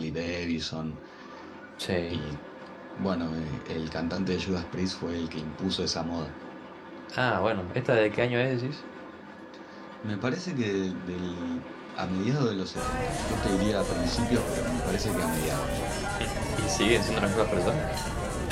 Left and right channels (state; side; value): identical; both; correlation 1.00